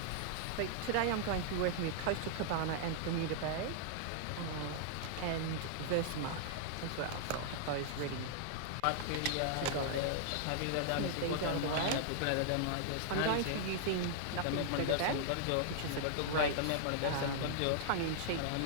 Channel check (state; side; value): different; both; correlation -0.01